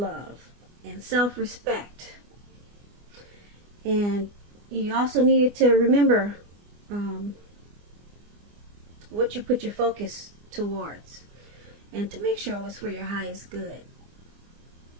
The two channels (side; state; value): left; late; 24 ms